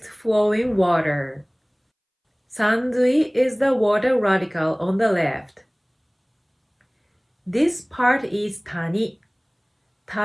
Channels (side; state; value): both; identical; correlation 1.00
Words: flowing water. Sanzui is the water radical on the left. This part is tani.